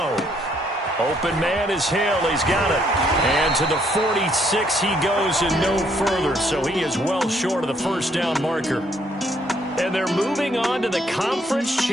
Open man is Hill. He's got it. And to the 46 he goes and no further. So he is well short of the first down marker. And they're moving on to the conference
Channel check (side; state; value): both; normal; correlation 0.69